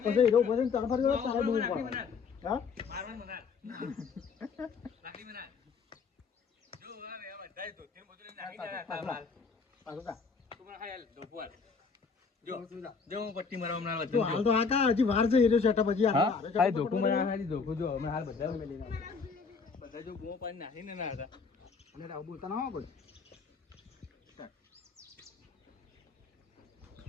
પછી હીરો ભરીને તને ફરી તારે બૂમો પાડવાની. હા પટ્ટી મારવા હાલ તો આ હજી વાર છે હીરો સેટઅપ હજી ધોકું મને ખાલી ધોકું જો અમે હાલ બધા બધા જો બૂમો પાડી નાખીને ના હતા અને આવું બોલતા ના હોય કોઈ.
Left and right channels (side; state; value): right; quieter; 5.1 dB